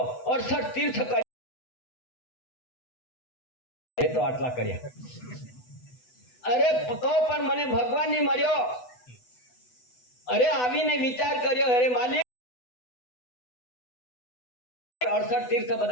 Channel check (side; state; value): right; late; 8.0 ms